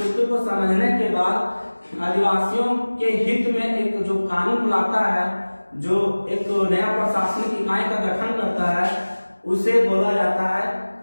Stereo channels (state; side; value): inverted; both; correlation -1.00